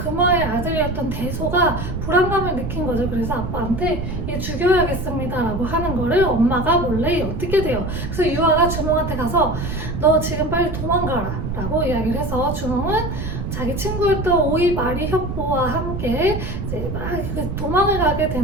아들이었던 대소가 불안감을 느낀 거죠. 그래서 아빠한테 얘 죽여야겠습니다 라고 하는 거를 엄마가 몰래 어떻게 돼요. 그래서 유아가 주몽한테 가서 너 지금 빨리 도망가라 라고 이야기를 해서, 주몽은 자기 친구였던 오이 마리 협보와 함께 이제 막 도망을 가게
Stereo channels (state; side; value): noise; right; rumble, 4 dB below the sound